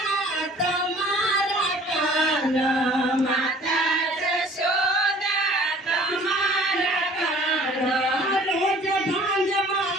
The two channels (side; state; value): both; normal; correlation 0.51